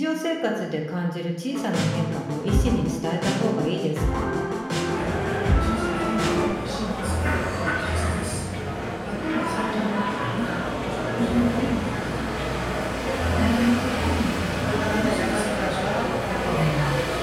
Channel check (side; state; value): both; identical; correlation 1.00